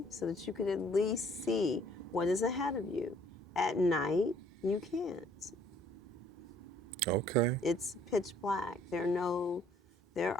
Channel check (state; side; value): normal; both; correlation 0.60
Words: so that you could at least see what is ahead of you. At night, you can't. Okay. It's pitch black. There